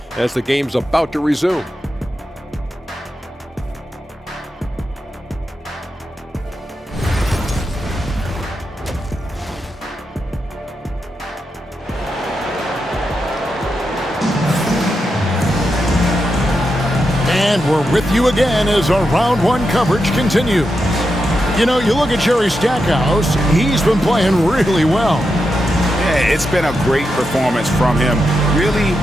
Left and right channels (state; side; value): normal; both; correlation 0.87